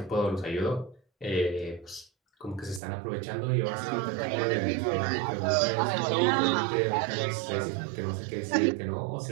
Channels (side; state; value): left; drops out; at 2.8 s